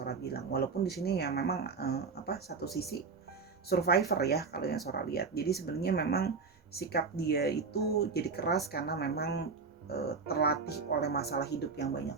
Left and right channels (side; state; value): left; quieter; 4.8 dB